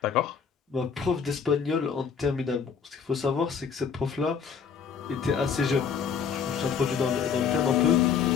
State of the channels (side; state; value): right; quieter; 6.6 dB